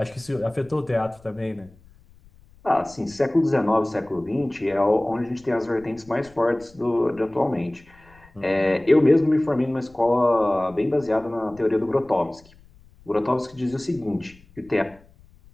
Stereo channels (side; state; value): left; noise; rumble, 27 dB below the sound